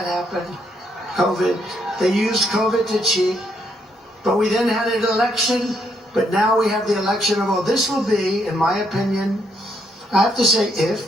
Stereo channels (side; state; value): both; normal; correlation 0.74